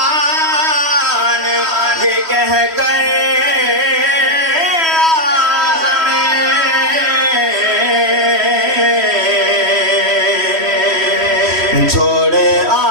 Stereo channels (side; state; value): left; late; 3.1 ms